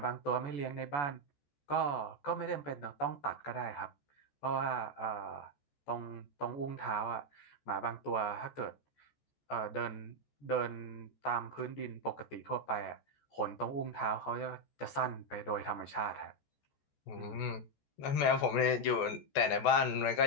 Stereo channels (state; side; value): late; right; 14 ms